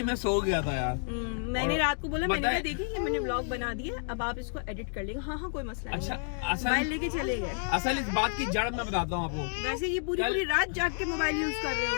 मैं सो गया था यार। मैंने रात को बोला, मैंने कहा देखिए ये मैंने ब्लॉग बना दिया, अब आप इसको एडिट कर लेंगे। हाँ कोई मसला नहीं। अच्छा मोबाइल लेके चले गए। असल इस बात की जड़ मैं बताता हूँ आपको। वैसे ये पूरी रात जाग के मोबाइल यूज कर रहे हो।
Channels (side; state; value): right; silent; digital silence